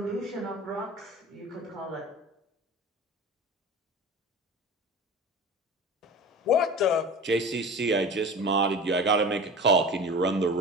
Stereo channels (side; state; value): both; normal; correlation 0.35